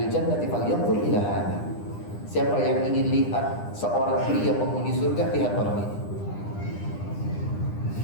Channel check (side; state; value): right; late; 9.9 ms